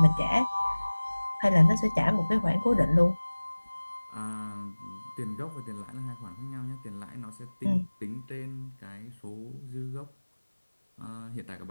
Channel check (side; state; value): both; inverted; correlation -1.00